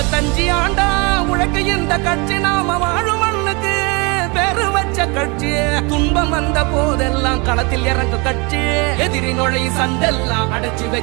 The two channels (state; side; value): quieter; left; 29.4 dB